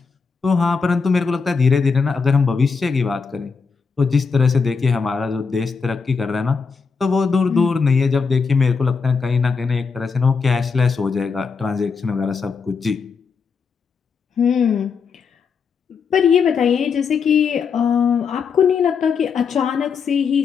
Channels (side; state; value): right; quieter; 5.4 dB